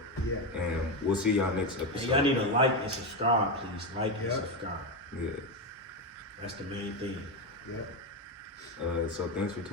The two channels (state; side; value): normal; both; correlation 0.11